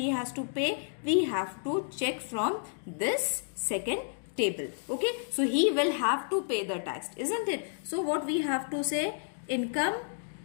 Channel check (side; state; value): right; silent; digital silence